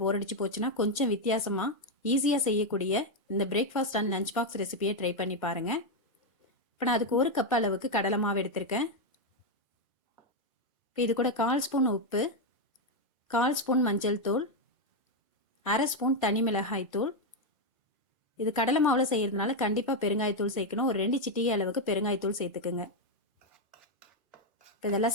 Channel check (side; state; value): both; normal; correlation 0.03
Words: அடிச்சு போச்சுன்னா கொஞ்சம் வித்தியாசமா ஈஸியாக செய்யக்கூடிய இந்த பிரேக்ஃபாஸ்ட் அண்ட் லஞ்ச் பாக்ஸ் ரெசிபியை ட்ரை பண்ணி பாருங்க. இப்போ நான் அதுக்கு 1 கப் அளவுக்கு கடலை மாவு எடுத்திருக்கேன். இப்போ இது கூட 1/4 ஸ்பூன் உப்பு, 1/4 ஸ்பூன் மஞ்சள் தூள், 1/2 ஸ்பூன் தனி மிளகாய் தூள். இது கடலை மாவில் செய்யறதுனால கண்டிப்பாக பெருங்காயத்தூள் சேர்க்கணும். ஒரு 2 சிட்டிகை அளவுக்கு பெருங்காயத்தூள் சேர்த்துக்குங்க. இப்போ இதெல்லாம்